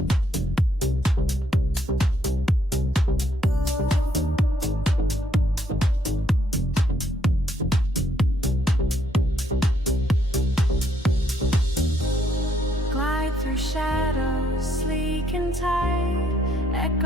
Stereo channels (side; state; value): both; normal; correlation 0.71